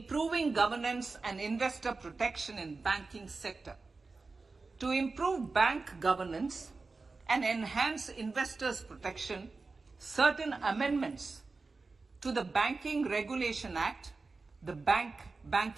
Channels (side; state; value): left; quieter; 3.9 dB